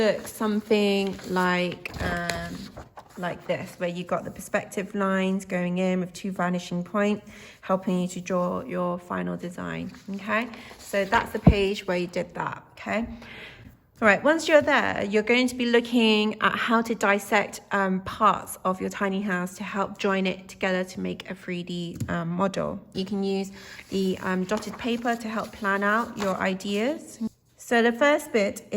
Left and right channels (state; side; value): identical; both; correlation 1.00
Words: something like this, where you've got the perspective lines going in with two vanishing points, helping you to draw your final design. Okay, so that's the page where you did that. Okay, all right, once you're there, you're going to be looking at how to dissect parts of your tiny house to help join it together to make a 3D model. You can use the dotted paper to help plan out your ideas. So the first bit